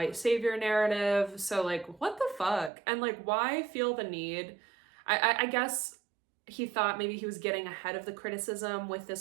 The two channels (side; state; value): left; drops out; at 2.7 s